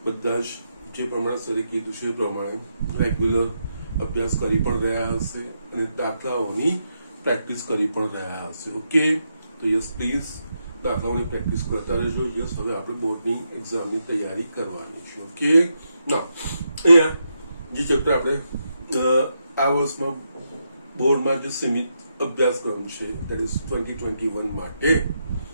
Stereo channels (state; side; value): inverted; both; correlation -0.82